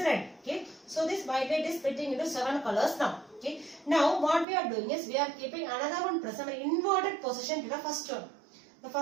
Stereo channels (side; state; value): left; drops out; at 4.5 s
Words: Okay, so this white light is splitting into 7 colors now. Okay, now what we are doing is we are keeping another one prism in inverted position to the first one. The